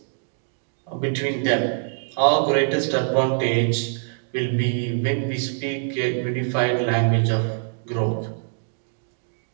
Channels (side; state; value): left; silent; digital silence